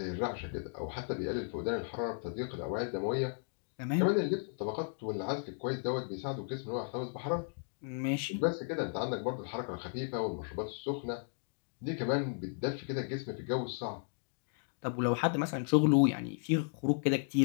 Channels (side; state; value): right; silent; 54 dB below the other